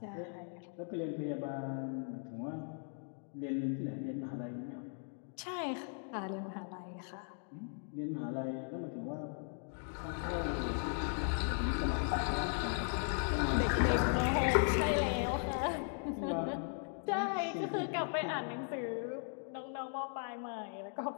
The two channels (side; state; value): right; silent; 52 dB below the other